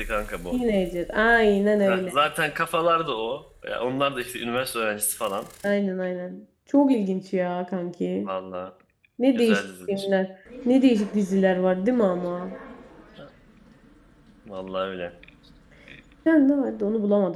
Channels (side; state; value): both; identical; correlation 1.00